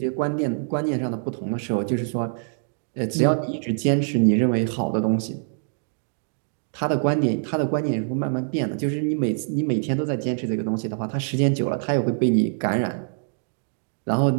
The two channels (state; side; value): silent; left; digital silence